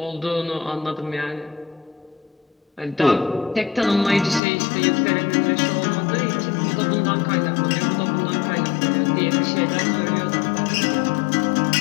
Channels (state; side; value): drops out; right; at 4.4 s